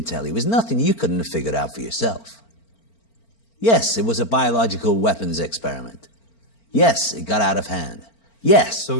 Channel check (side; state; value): right; late; 4.4 ms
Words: tell you is nothing you couldn't have figured out for yourself. Yes, it was a biological weapons experiment. Yes, it got out of hand. Yes. So